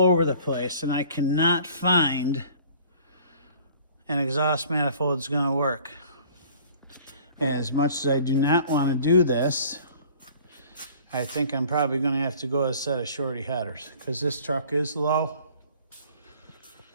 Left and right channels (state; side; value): inverted; both; correlation -0.51